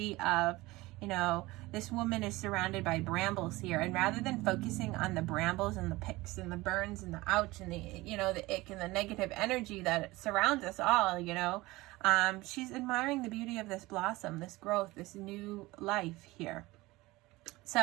of, you know, this woman is surrounded by brambles here, and rather than focusing on the brambles and the picks and the burns and the ouch and the, you know, the ick and the negative energy that surrounds us all, you know, she's admiring the beauty of this blossom, this growth, this new life here.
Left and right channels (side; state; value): left; quieter; 20.3 dB